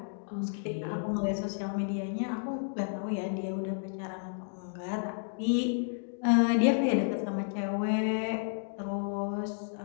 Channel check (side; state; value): right; silent; digital silence